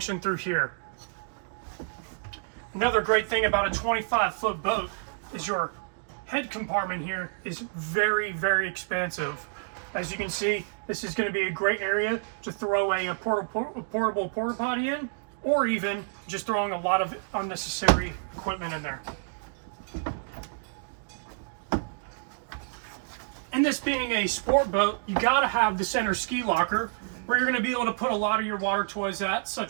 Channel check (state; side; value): silent; left; digital silence